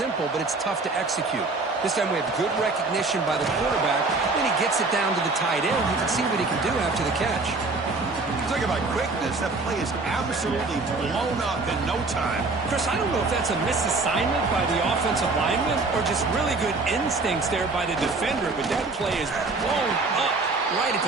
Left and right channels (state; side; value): quieter; left; 3.6 dB